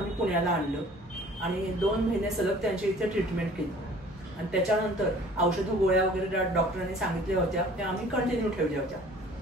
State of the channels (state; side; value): normal; both; correlation 0.50